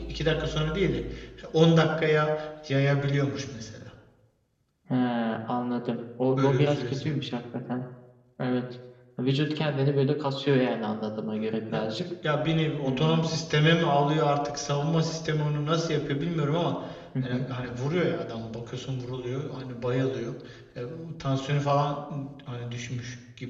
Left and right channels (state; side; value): identical; both; correlation 1.00